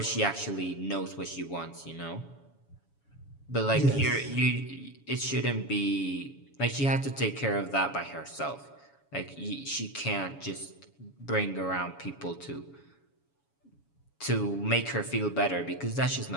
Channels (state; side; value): late; right; 7.1 ms